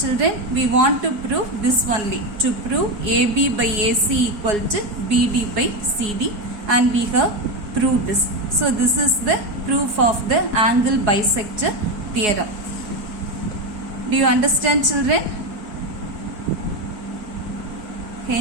we want to prove this only, to prove AB by AC equal to BD by CD, and we have proved this. So this is the proof of the angle bisector theorem. Do you understand, children?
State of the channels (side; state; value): left; late; 4.8 ms